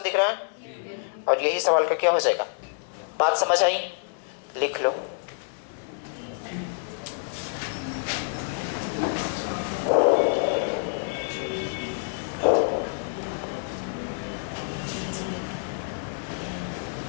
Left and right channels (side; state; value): right; silent; 60 dB below the other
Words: दिख रहा है? और यही सवाल का क्या हो जाएगा। बात समझ आई? लिख लो।